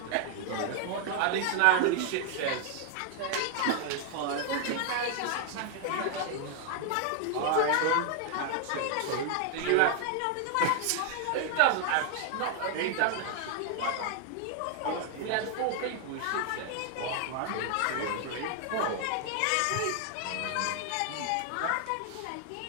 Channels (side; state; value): both; different; correlation 0.00